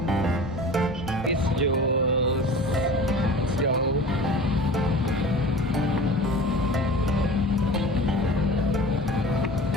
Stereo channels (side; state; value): both; normal; correlation 0.39